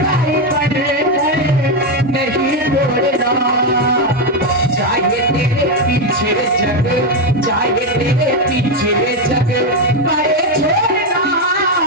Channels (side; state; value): both; normal; correlation 0.07